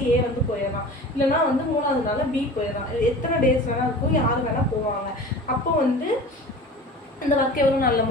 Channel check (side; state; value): both; normal; correlation 0.38